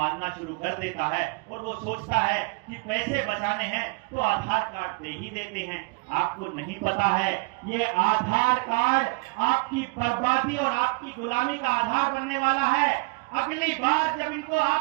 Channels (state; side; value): quieter; left; 29.0 dB